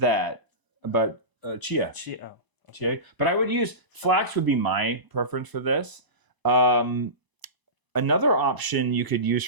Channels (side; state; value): left; late; 1.0 ms